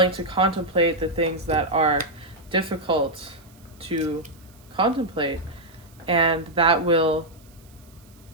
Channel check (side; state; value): right; noise; hiss, 28 dB below the sound